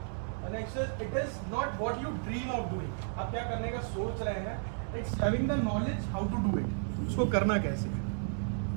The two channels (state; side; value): silent; left; 56 dB below the other